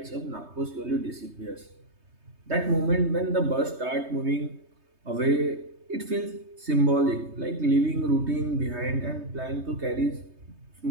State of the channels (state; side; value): late; left; 3.2 ms